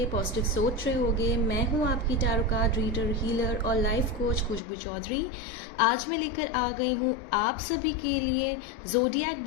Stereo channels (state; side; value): drops out; right; at 4.6 s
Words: पॉजिटिव सोच रहे होगे। मैं हूं आपकी टैरो कार्ड रीडर, हीलर और लाइफ कोच खुशबू चौधरी। आज मैं लेकर आ गई हूं आप सभी के लिए ज़ोडिएक